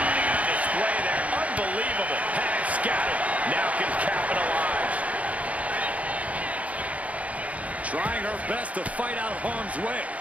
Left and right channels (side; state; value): left; late; 0.067 ms